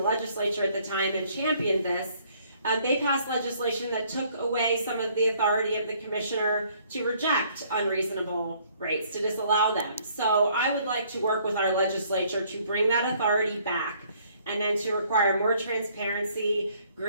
legislature at the time and championed this. They passed legislation that took away some of the authority of the commissioner to reject unreasonable rates, to disallow them. So I would like to work with our legislature to bring that authority back, and then to require more transparency,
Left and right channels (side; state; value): both; inverted; correlation -0.63